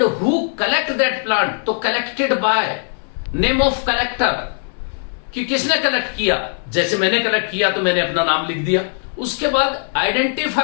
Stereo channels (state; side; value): silent; right; 66 dB below the other